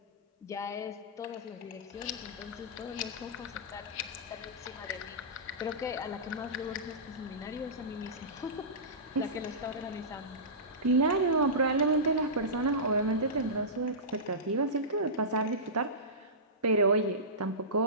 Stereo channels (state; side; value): normal; both; correlation -0.19